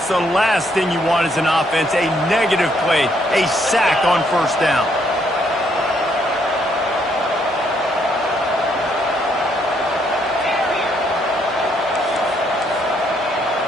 the last thing you want as an offense, a negative play, a sack on first down.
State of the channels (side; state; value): both; normal; correlation 0.71